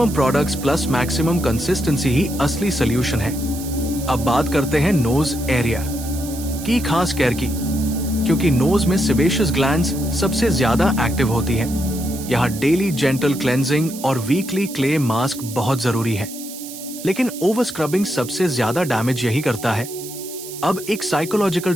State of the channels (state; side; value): noise; right; hiss, 12 dB below the sound